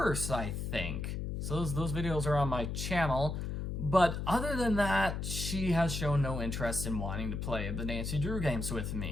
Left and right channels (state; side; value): noise; left; hum, 3 dB below the sound